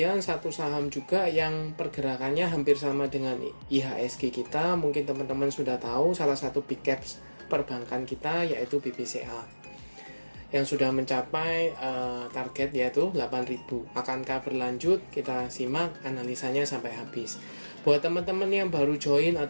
satu saham juga yang pergerakannya hampir sama dengan IHSG kita. Mungkin teman-teman sudah tahu, salah satu big caps perbankan kita yaitu BBCA. Yang sudah mencapai target yaitu 8.000. Akankah berlanjut? Kita simak analisanya sampai habis. Buat teman-teman yang baru join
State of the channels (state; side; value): inverted; both; correlation -1.00